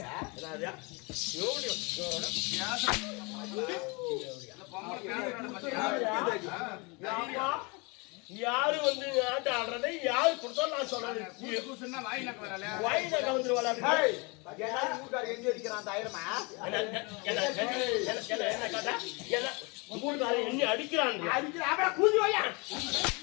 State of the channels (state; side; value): quieter; right; 29.1 dB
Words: யாரு வந்து ஆட்ட ஆடுறதை யாரு கொடுத்தா நான் சொல்றேன். வாயில கலந்துருவாளா? எண்ணி அடிக்கிறான்.